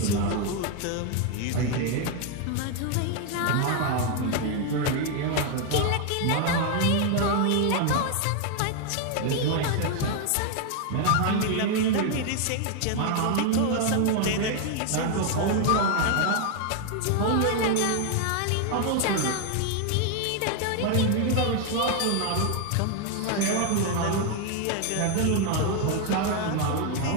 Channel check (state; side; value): different; both; correlation 0.01